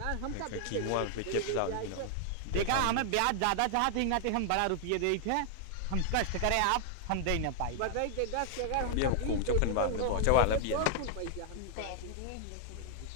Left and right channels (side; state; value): both; different; correlation 0.00